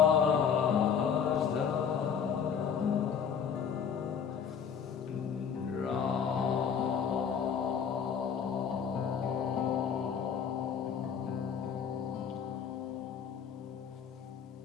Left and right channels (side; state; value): right; quieter; 7.3 dB